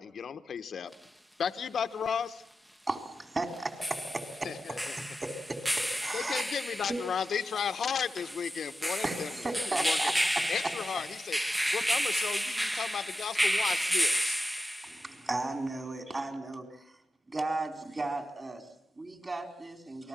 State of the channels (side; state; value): both; normal; correlation 0.91